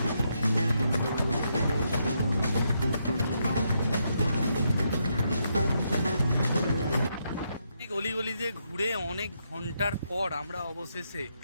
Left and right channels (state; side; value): inverted; both; correlation -0.79